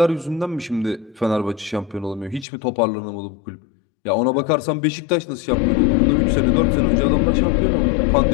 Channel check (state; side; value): drops out; right; at 2.5 s